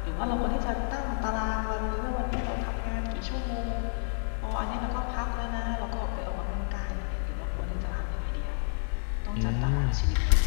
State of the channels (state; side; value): silent; right; digital silence